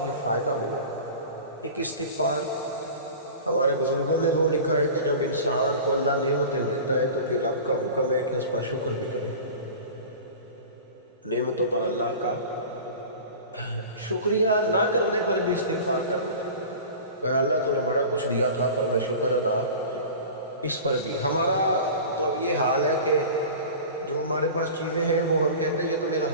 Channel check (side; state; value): both; inverted; correlation -0.36